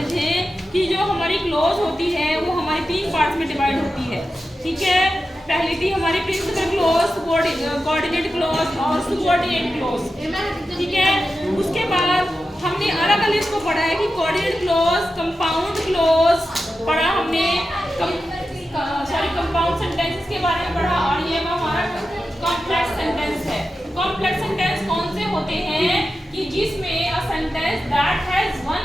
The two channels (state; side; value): normal; both; correlation 0.91